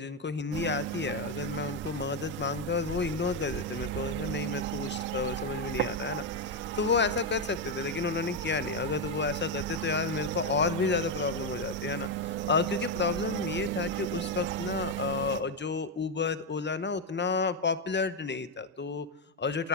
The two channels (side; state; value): both; normal; correlation 0.06